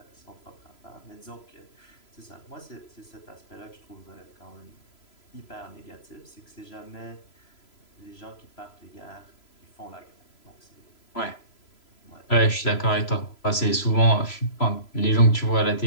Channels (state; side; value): late; right; 3.0 ms